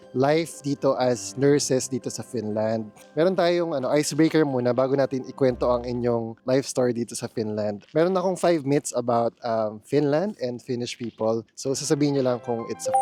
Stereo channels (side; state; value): both; identical; correlation 1.00